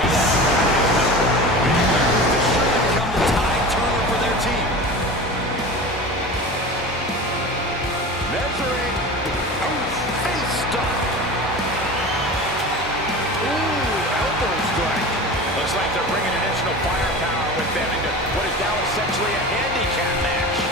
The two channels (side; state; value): both; normal; correlation 0.33